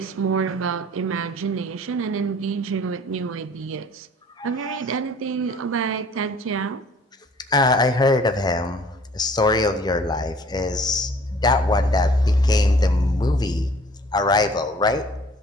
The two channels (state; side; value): normal; both; correlation 0.52